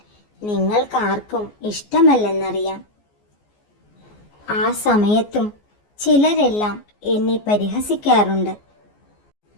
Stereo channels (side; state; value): right; late; 14 ms